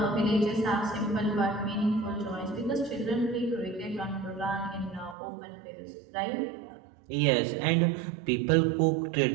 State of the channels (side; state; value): left; drops out; at 5.2 s